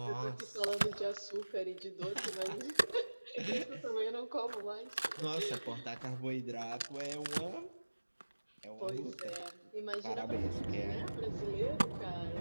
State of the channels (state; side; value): inverted; both; correlation -1.00